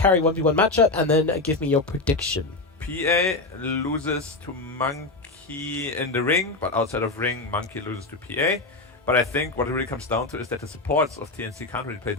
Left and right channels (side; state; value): right; quieter; 3.3 dB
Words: carry 1v1 matchup, and then give me your prediction. PA loses to Monkey in the ring, but outside of ring, Monkey loses to PA. But I think what it really comes down to is that the supports of TNC can't really play